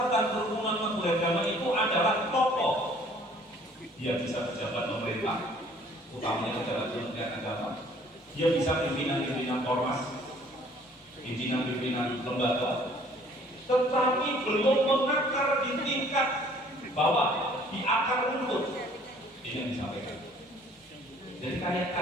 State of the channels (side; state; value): both; normal; correlation 0.56